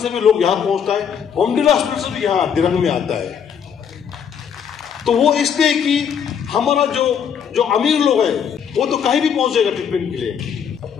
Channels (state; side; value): quieter; right; 7.7 dB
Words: भी लोग यहाँ पहुंचता है, बोमडिला हॉस्पिटल से भी यहाँ दिनांक में आता है। तो वो इसलिए कि हमारा जो अमीर लोग हैं वो तो कहीं भी पहुंच जाएगा ट्रीटमेंट के लिए,